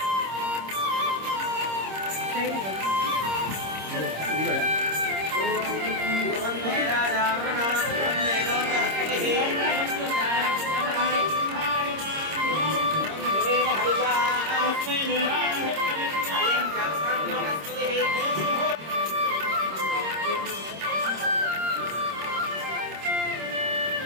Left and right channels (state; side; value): late; left; 26 ms